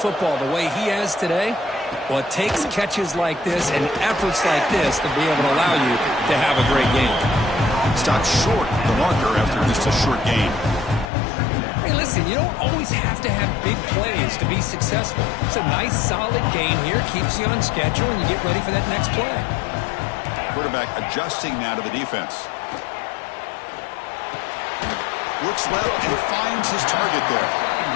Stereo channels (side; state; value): right; drops out; at 11.1 s